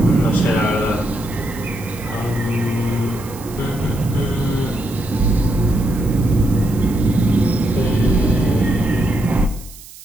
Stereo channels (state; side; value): noise; right; hiss, 18 dB below the sound